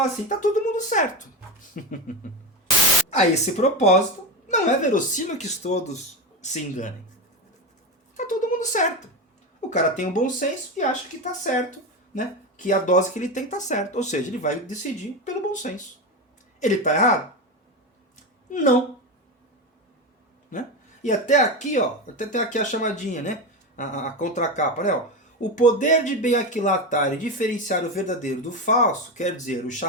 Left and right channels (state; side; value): normal; both; correlation 0.18